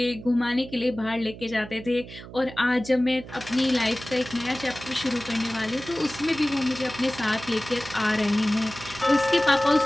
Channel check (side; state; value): right; noise; hum, 15 dB below the sound